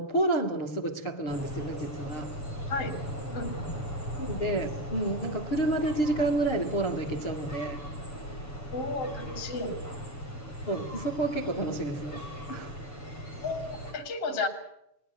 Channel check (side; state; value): right; late; 7.1 ms